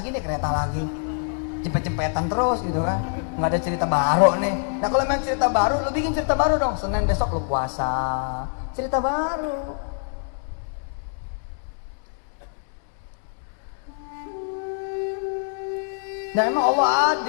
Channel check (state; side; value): silent; right; 62 dB below the other